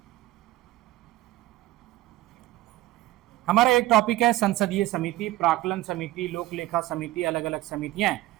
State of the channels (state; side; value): quieter; left; 17.0 dB